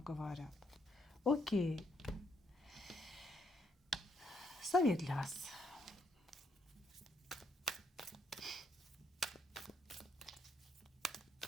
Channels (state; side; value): normal; both; correlation 0.74